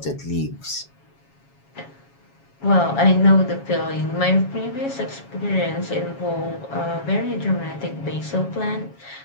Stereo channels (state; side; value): late; right; 7.2 ms